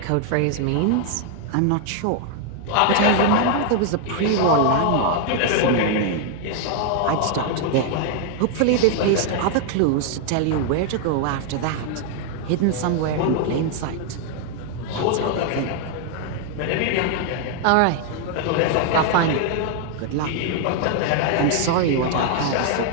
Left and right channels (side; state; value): both; different; correlation 0.00